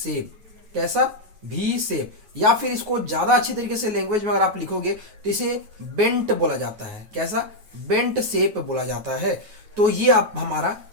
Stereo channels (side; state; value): left; late; 9.4 ms